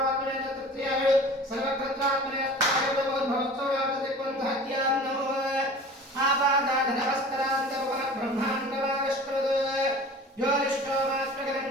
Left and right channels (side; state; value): both; normal; correlation 0.41